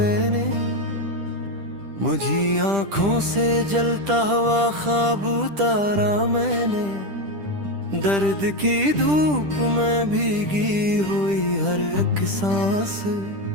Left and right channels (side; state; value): left; late; 10 ms